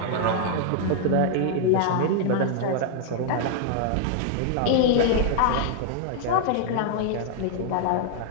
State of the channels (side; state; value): both; different; correlation 0.00